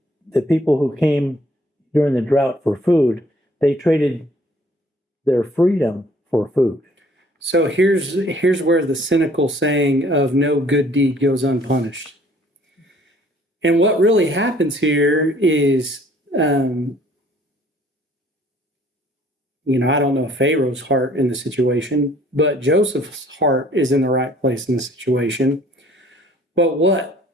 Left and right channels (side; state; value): both; normal; correlation 0.58